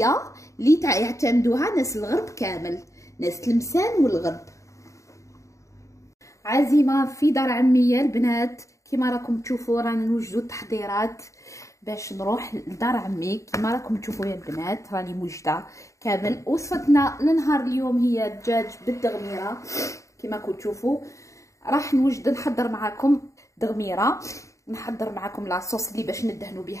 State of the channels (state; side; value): late; right; 0.15 ms